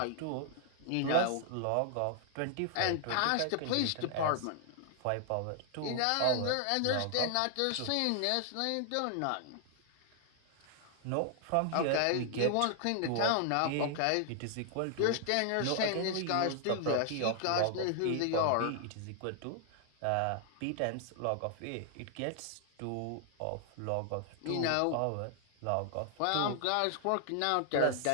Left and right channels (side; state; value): both; different; correlation 0.00